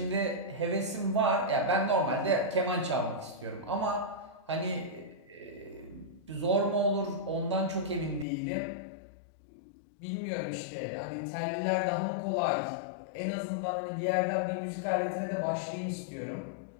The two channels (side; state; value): right; drops out; at 8.2 s